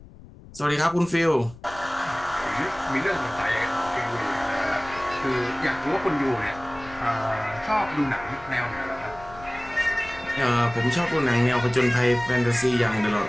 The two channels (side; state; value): left; noise; rumble, 20 dB below the sound